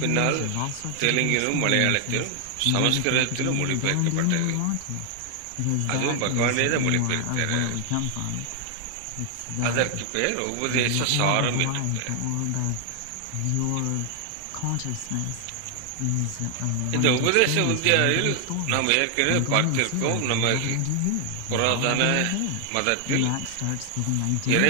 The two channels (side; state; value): both; different; correlation 0.00